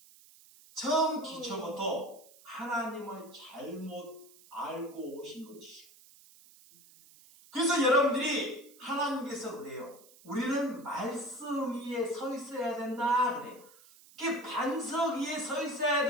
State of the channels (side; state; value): right; noise; hiss, 24 dB below the sound